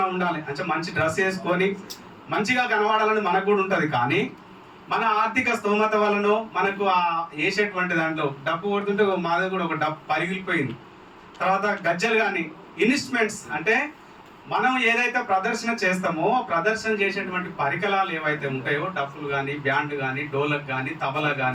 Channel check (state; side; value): identical; both; correlation 1.00